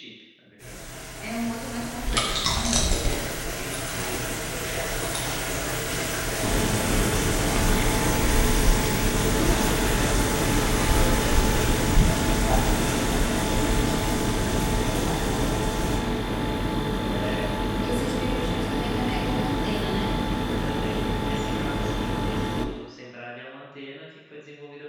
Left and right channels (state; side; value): identical; both; correlation 1.00